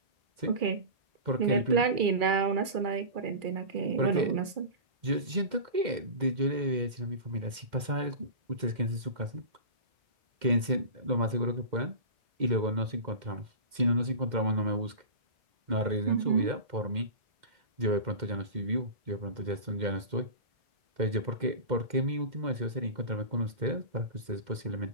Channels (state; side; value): late; left; 2.1 ms